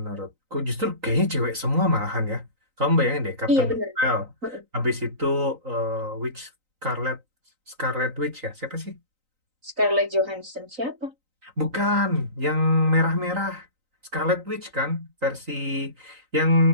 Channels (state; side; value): late; left; 3.9 ms